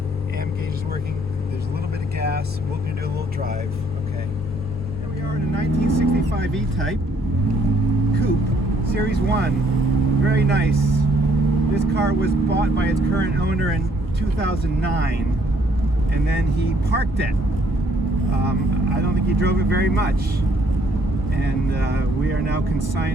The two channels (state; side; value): normal; both; correlation 0.66